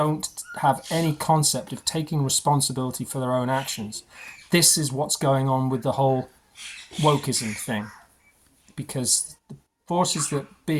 have any concept of taking responsibility for their own actions. This is what's going on with the whole wokeism thing, because the forces that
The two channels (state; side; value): identical; both; correlation 1.00